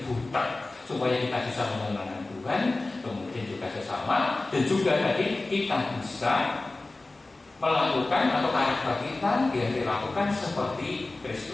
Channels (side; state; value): right; quieter; 3.2 dB